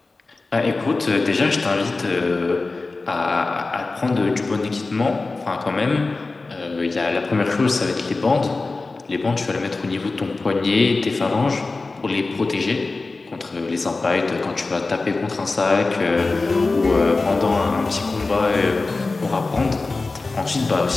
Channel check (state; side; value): quieter; right; 3.6 dB